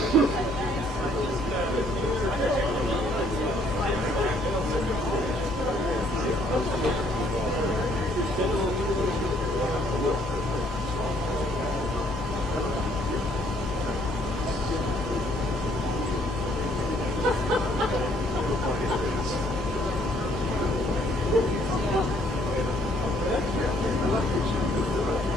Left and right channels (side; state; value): both; normal; correlation 0.65